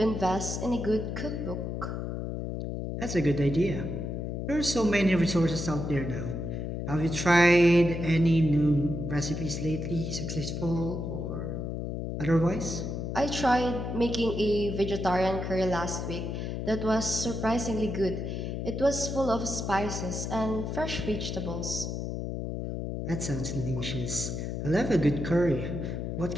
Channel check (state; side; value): noise; left; hum, 4 dB below the sound